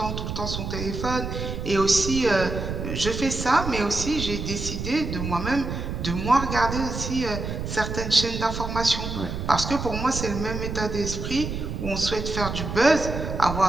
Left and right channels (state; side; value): noise; right; rumble, 5 dB below the sound